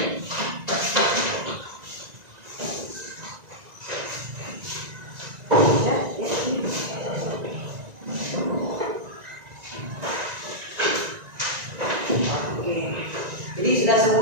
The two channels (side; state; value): left; late; 1.9 ms